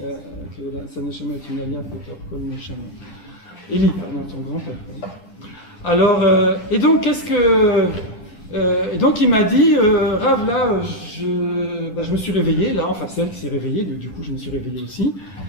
que sa neshama est une alia, peut-être comme neshama. Eli, pardon, son grand-père. Alors, et donc, et donc, il m'a dit, Rav, là, je me suis réveillé, là, enfin, c'est elle qui s'est réveillée, du coup, je me suis réveillé aussi.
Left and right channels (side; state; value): right; late; 9.9 ms